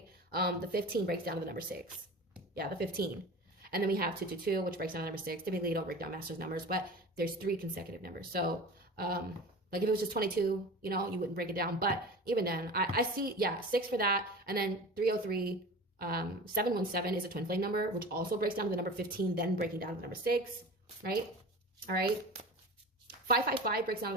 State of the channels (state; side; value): normal; both; correlation 0.35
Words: The 15 breaks down to the number 6. Yeah, the 15. And then we have 222, which breaks down to number 6. Typically, you don't break down master's numbers, but there's 3 consecutive numbers. So, like if it was just 22, you know, you wouldn't break it down. But even then, I see, yeah, 6 for that. And then 303, 717 is a twin flame number, which also breaks down to the number 15, then breaking down to the number 6, right? All right. 555 breaks down to